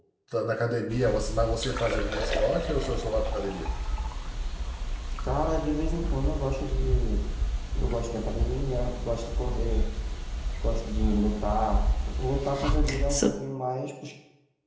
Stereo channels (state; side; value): identical; both; correlation 1.00